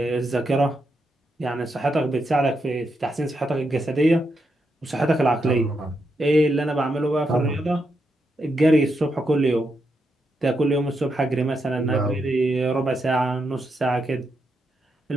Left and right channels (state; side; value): normal; both; correlation 0.83